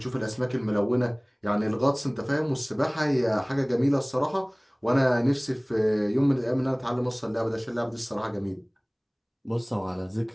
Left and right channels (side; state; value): both; identical; correlation 1.00